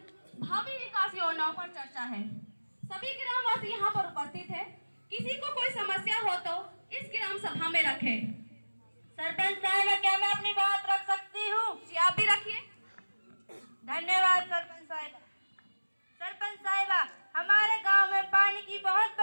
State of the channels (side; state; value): both; inverted; correlation -1.00